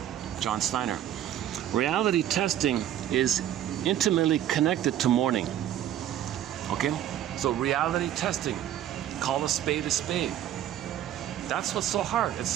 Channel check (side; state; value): left; quieter; 11.5 dB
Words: John Steiner. Reality testing is intimately connected to mourning. Okay? So reality testing, call a spade a spade. That's what's so hard.